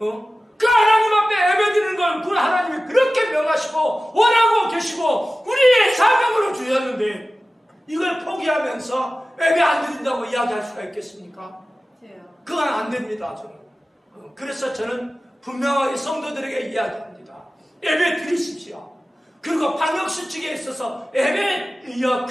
하나님 앞에 예배드리는 걸 그 하나님이 그렇게 명하시고 원하고 계시고 우리의 사명으로 주셨는데 이걸 포기하면서 예배 안 드린다고 이야기할 수가 있겠습니까? 그건 안 됩니다. 저는. 그래서 저는 분명하게 성도들에게 이야기합니다. 예배 드리십시오. 그리고 방역수칙에 있어서 예배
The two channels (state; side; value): normal; both; correlation 0.96